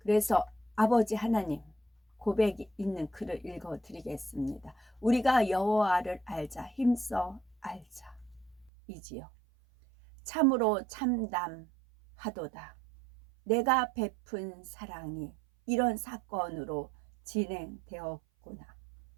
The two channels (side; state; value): left; drops out; at 8.7 s